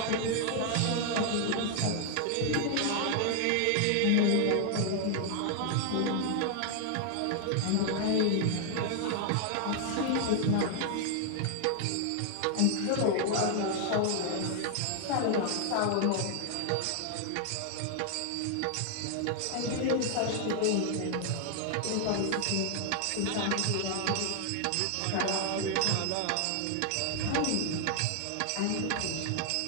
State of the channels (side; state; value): both; different; correlation 0.00